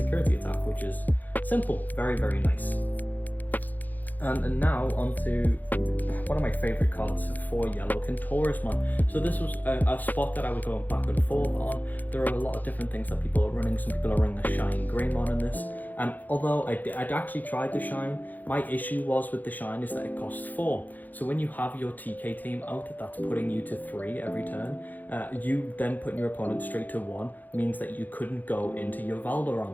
attack, which is simple, very, very nice. And now onto one of my favourite cards for yellow, Kentaurismon. So this was a spot that I was going back and forth on. There are a lot of different things that people are running. Some people are running the Shine Greymon in this. And although I'd actually tried the Shine, my issue was with the Shine is that it costs 4. So when you have your TK team out, that's putting you to 3 every turn. You then putting your opponent straight to 1 means that you couldn't go into your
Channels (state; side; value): late; right; 0.083 ms